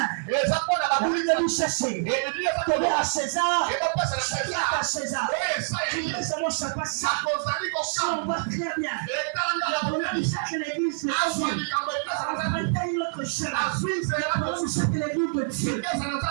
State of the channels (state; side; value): silent; left; digital silence